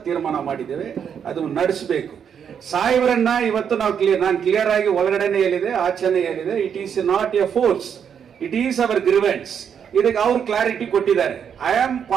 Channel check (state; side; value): quieter; left; 7.8 dB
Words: ತೀರ್ಮಾನ ಮಾಡಿದ್ದೇವೆ. ಅದು ನಡೆಸಬೇಕು. ಸಾಹೇಬರನ್ನ ಇವತ್ತು ನಾನು ಕ್ಲಿಯರ್ ಆಗಿ ಒಳಗಡೆನೆ ಹೇಳಿದೆ, ಆಚೆನೆ ಹೇಳಿದೆ. It is not a force, it is our grievance. ಇದಕ್ಕೆ ಅವ್ರು ಕ್ಲಾರಿಟಿ ಕೊಟ್ಟಿದ್ದಾರೆ. I am